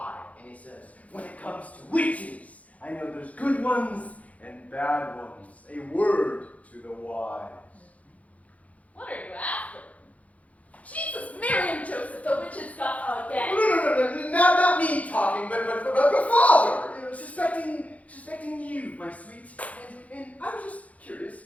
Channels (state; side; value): late; right; 0.068 ms